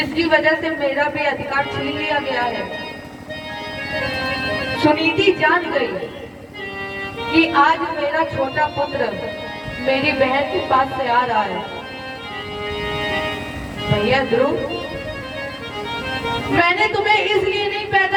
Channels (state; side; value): identical; both; correlation 1.00